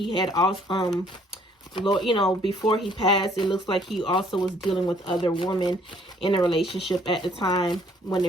had also, you know, before he passed, it looks like he also was dealing with other women in a relationship at the time when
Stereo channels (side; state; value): both; normal; correlation 0.62